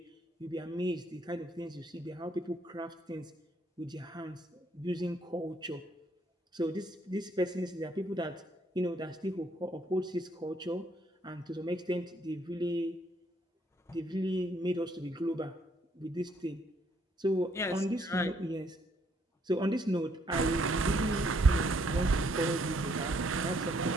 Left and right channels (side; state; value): both; normal; correlation 0.69